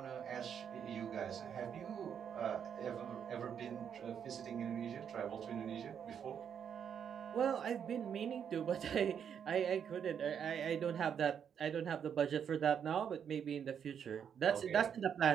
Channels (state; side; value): quieter; left; 8.0 dB